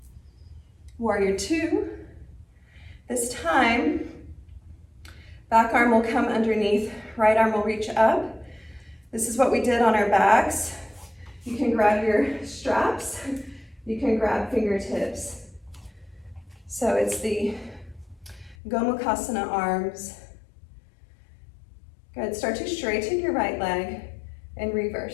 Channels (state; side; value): drops out; right; at 18.6 s